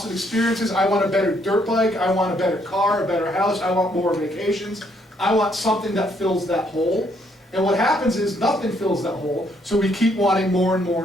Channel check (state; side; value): normal; both; correlation 0.70